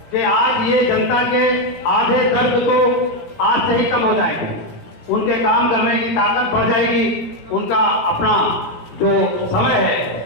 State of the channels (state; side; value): late; right; 17 ms